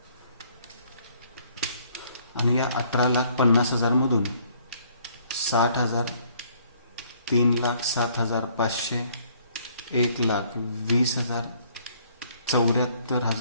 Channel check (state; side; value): inverted; both; correlation -0.63